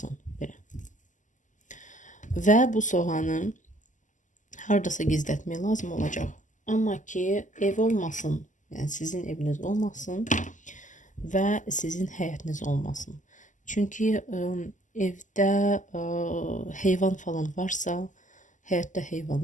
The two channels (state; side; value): late; right; 0.37 ms